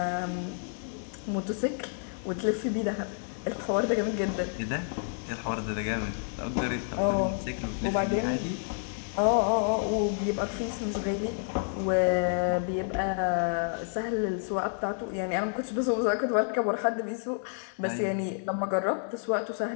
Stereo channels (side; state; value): right; silent; digital silence